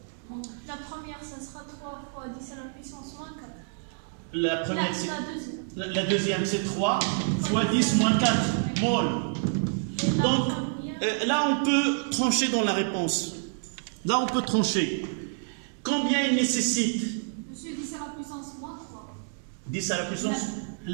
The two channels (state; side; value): silent; left; digital silence